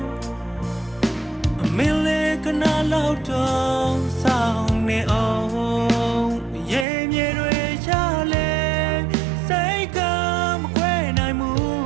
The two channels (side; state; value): left; drops out; at 6.9 s